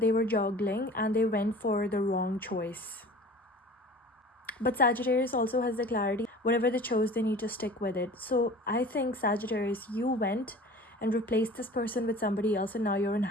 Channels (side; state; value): both; normal; correlation 0.42